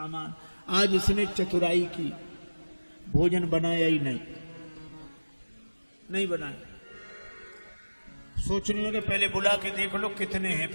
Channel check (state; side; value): inverted; both; correlation -1.00